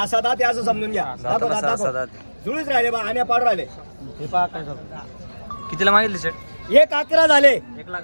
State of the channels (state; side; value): inverted; both; correlation -1.00